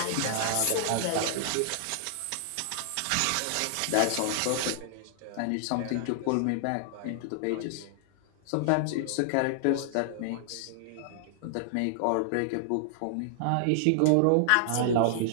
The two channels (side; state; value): both; different; correlation -0.01